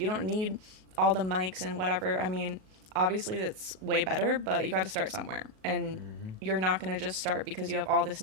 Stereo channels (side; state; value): left; late; 38 ms